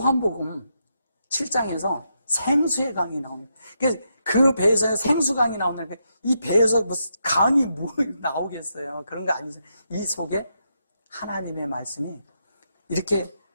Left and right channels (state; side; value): inverted; both; correlation -0.82